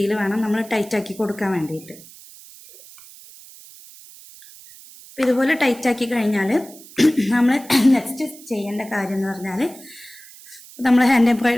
വേണം നമ്മൾ ടൈറ്റാക്കി കൊടുക്കാൻ വേണ്ടിയിട്ട്. ഇതുപോലെ ടൈറ്റാക്കി കഴിഞ്ഞാൽ നമ്മൾ നെക്സ്റ്റ് ചെയ്യേണ്ട കാര്യം എന്ന് പറഞ്ഞാൽ, നമ്മൾ ഹാൻഡ്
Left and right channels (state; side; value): noise; right; hiss, 20 dB below the sound